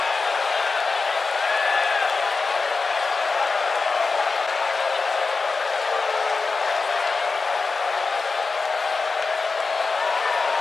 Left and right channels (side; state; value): right; quieter; 4.3 dB